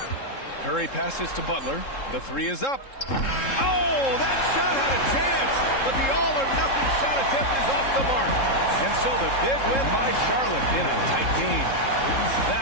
Curry passes to Butler. The three is up. Oh, that shot had a chance, but the all-or-nothing shot attempt is off the mark. And so the big win by Charlotte in a tight game.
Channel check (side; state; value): right; late; 3.7 ms